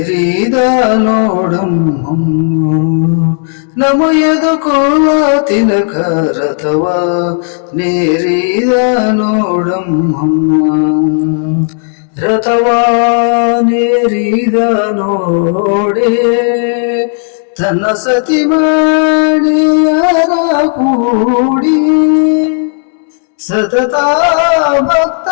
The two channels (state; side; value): silent; right; 74 dB below the other